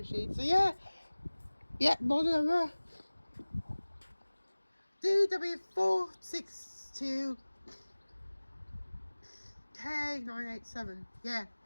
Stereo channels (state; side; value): inverted; both; correlation -1.00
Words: So yeah, model number DW462 K987. Yeah.